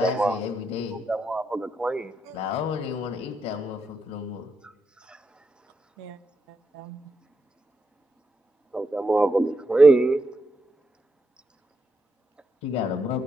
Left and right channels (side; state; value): both; normal; correlation 0.83